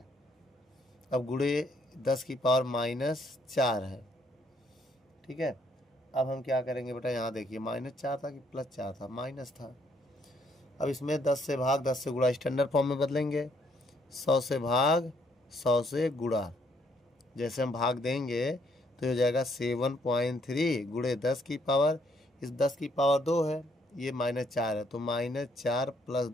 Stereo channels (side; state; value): both; normal; correlation 0.69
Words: अब गुणे 10 की पावर -4 है, ठीक है। अब हम क्या करेंगे बेटा, यहाँ देखिए -4 था कि +4 था, माइनस था। अब इसमें 10 से भाग 10 से गुणा स्टैंडर्ड फॉर्म में बदलेंगे, 100 से भाग 100 से गुणा। जैसे हम भाग देंगे तो हो जाएगा 7.3 गुणे 10 की पावर, इस 10 की पावर 2 है, ये -4 है, तो -4 +